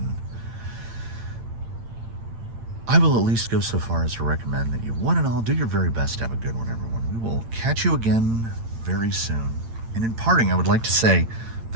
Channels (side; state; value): left; late; 8.8 ms